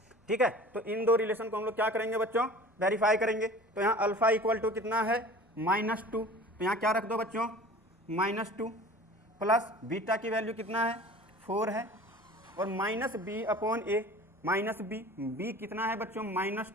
ठीक है, तो इन दो रिलेशन को हम लोग क्या करेंगे बच्चों, वेरीफाई करेंगे। तो यहाँ अल्फा इक्वल टू कितना है -2, तो यहाँ क्या रख दो बच्चों -2 प्लस बीटा की वैल्यू कितना है 4 है, और -b/a -b कितना है बच्चों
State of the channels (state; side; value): normal; both; correlation 0.42